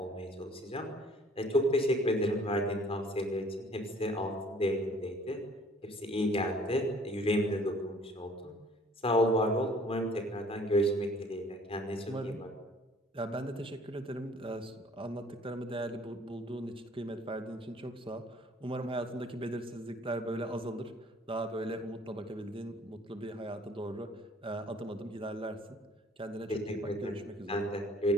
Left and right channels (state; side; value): normal; both; correlation 0.55